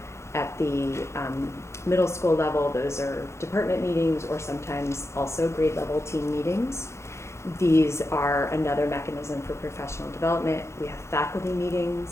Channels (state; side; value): late; right; 0.13 ms